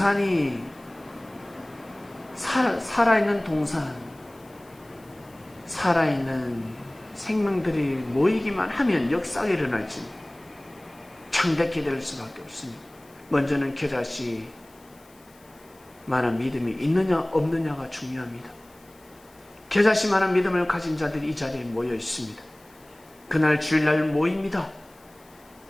살아있는 동산, 살아있는 생명들이 모이기만 하면 역사가 일어날지 창대케 될 수밖에 없습니다. 먼저는 겨자씨 만한 믿음이 있느냐 없느냐가 중요합니다. 겨자씨 만한 믿음을 가진 자들이 이 자리에 모여 있습니다. 그날 주일날 모입니다.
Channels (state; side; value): noise; left; hiss, 29 dB below the sound